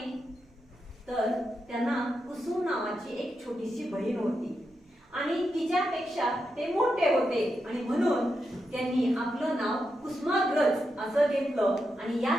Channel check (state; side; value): normal; both; correlation 0.86